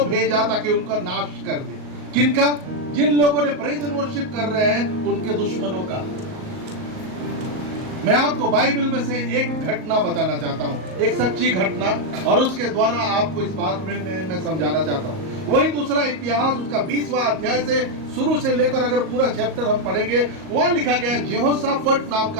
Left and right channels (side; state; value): left; late; 38 ms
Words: भेजा ताकि उनका नाश कर दे। किनका? जिन लोगों ने प्रेज एंड वर्शिप कर रहे हैं, उनके दुश्मनों का। मैं आपको बाइबल में से एक घटना बताना चाहता हूं, एक सच्ची घटना, और उसके द्वारा आपको इस बात में मैं समझाना चाहता हूं। वही दूसरा इतिहास, उसका 20वां अध्याय से शुरू से लेकर अगर पूरा चैप्टर हम पढ़ेंगे, वहां लिखा गया है, जेहोशाफट नाम